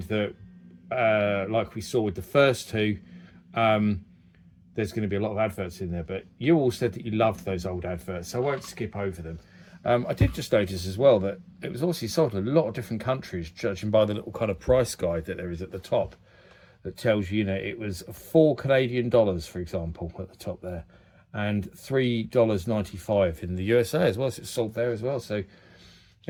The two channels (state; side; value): identical; both; correlation 1.00